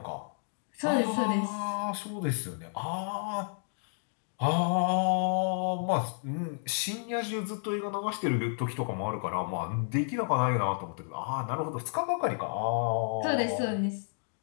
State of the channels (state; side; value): silent; right; digital silence